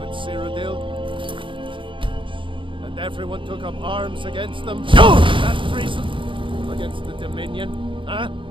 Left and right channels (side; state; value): left; late; 0.24 ms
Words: Cyrodiil, and everyone took up arms against them, that treason against the Dominion, huh?